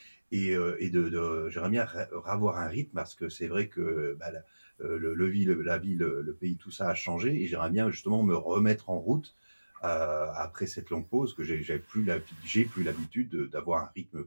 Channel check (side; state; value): both; inverted; correlation -1.00